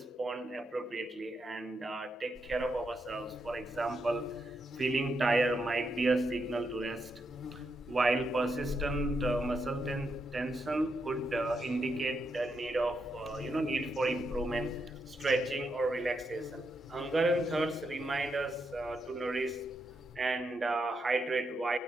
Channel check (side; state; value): both; normal; correlation 0.82